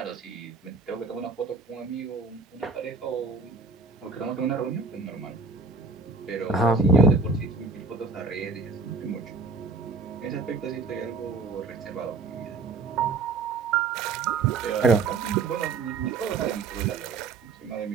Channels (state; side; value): quieter; left; 4.1 dB